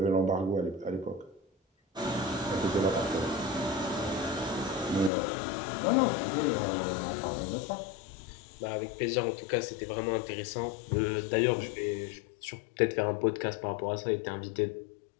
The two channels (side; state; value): right; drops out; at 5.1 s